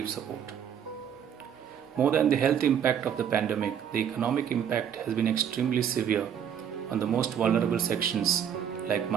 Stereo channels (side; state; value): left; quieter; 8.7 dB